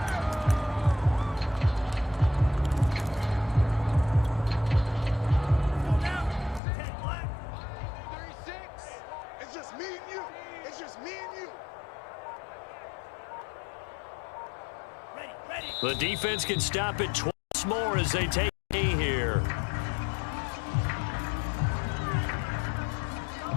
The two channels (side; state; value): right; drops out; at 6.6 s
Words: It's just me and you. It's just me and you. The defense can stop it twice more as they take a here.